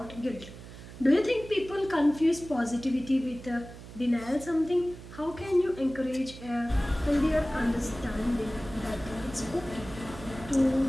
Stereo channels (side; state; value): right; noise; hum, 15 dB below the sound